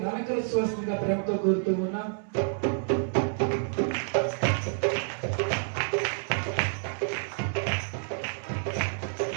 అలంకరించవలసిందిగా ప్రేమతో కోరుతూ ఉన్నాం.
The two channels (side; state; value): left; silent; 59 dB below the other